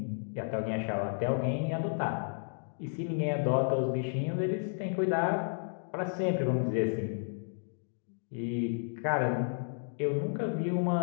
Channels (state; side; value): silent; right; digital silence